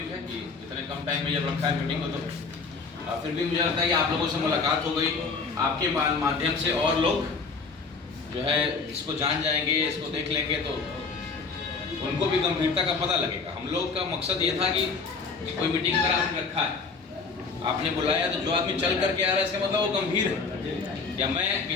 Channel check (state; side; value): quieter; right; 4.6 dB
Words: है कि इतने कम टाइम में जब रखा है मीटिंग को, तो फिर भी मुझे लगता है कि आप लोगों से मुलाकात हो गई, आपके माध्यम से और लोग जो है इसको जान जाएंगे, इसको देख लेंगे, तो उनको भी गंभीरता का पता लगेगा। हम लोग का मकसद ये था कि कोई मीटिंग अगर आपने रखा है, आपने बुलाया, तो जो आदमी चल करके आ रहा है इसका मतलब वो गंभीर है। या मैं